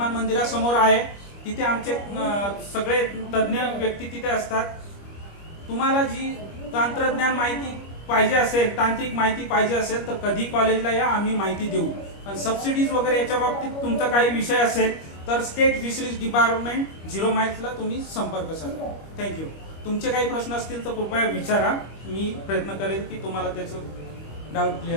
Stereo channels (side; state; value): right; late; 25 ms